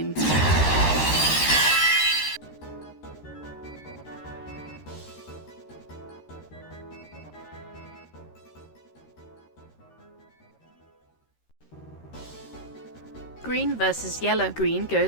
Green versus yellow. Green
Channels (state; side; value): late; right; 13 ms